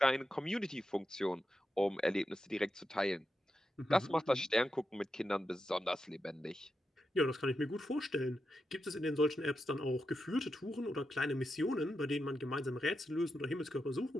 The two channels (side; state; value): both; normal; correlation 0.87